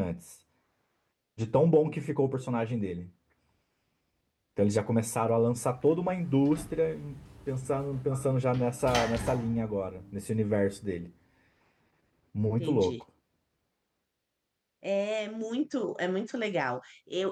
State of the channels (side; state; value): both; identical; correlation 1.00